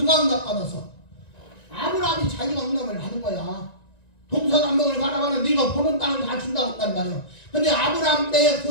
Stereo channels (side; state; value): right; late; 1.9 ms